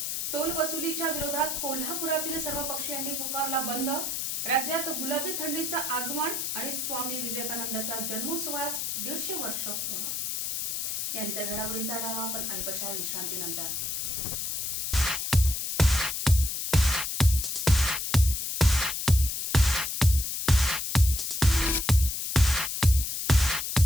टोल वसुलीच्या विरोधात कोल्हापुरातील सर्व पक्षीयांनी पुकारला बंद. राज्यात गुलाबी थंडीचं आगमन आणि स्वामी विवेकानंदाच्या जन्मोत्सवास 150 वर्ष पूर्ण. यानंतर घडामोडींचा आढावा आपण अल्पशा विश्रांतीनंतर.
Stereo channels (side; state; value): left; noise; hiss, 2 dB below the sound